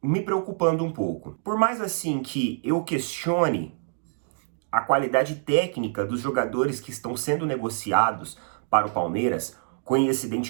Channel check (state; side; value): silent; left; digital silence